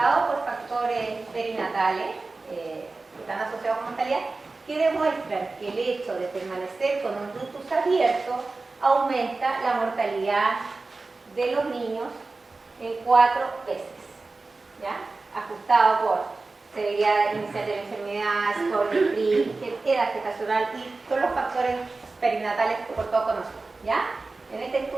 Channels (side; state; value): left; quieter; 3.6 dB